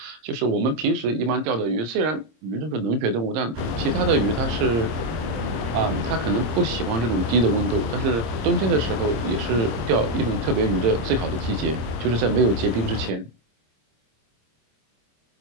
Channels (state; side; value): late; left; 26 ms